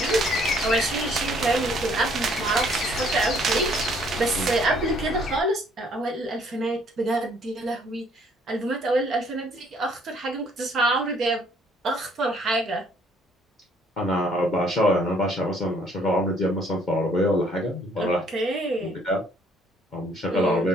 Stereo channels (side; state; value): both; normal; correlation 0.63